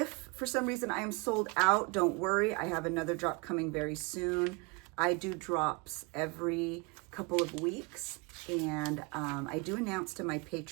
for some reason I am sold out, don't worry. I have another drop coming very soon. I do drops every couple of weeks. And I do announce to my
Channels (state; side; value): quieter; left; 29.1 dB